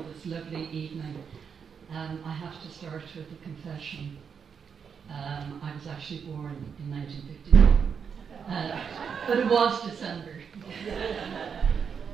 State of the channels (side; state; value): left; quieter; 6.6 dB